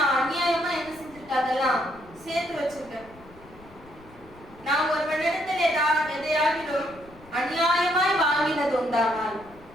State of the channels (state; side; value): noise; left; rumble, 23 dB below the sound